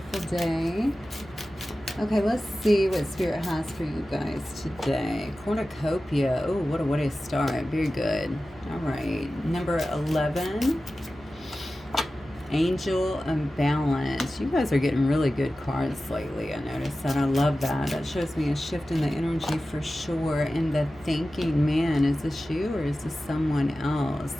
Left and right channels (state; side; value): noise; left; hum, 23 dB below the sound